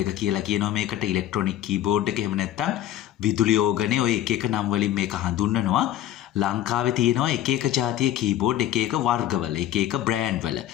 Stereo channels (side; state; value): right; quieter; 12.6 dB